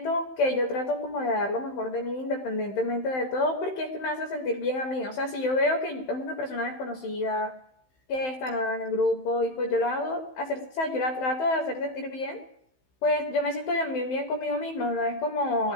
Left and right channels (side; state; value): right; late; 15 ms